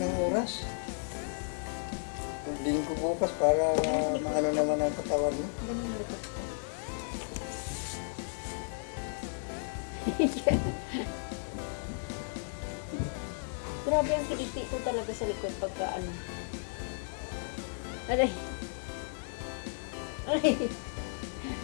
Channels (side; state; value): right; silent; digital silence